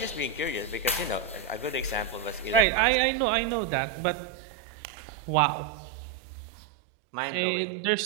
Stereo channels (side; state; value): left; drops out; at 2.7 s